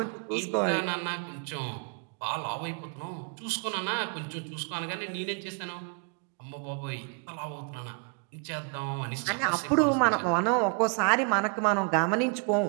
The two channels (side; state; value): left; quieter; 37.5 dB